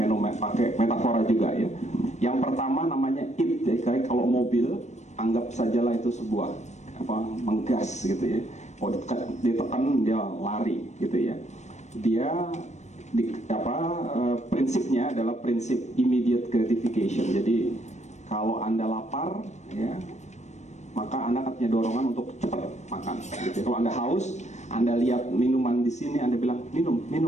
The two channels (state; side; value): late; right; 0.34 ms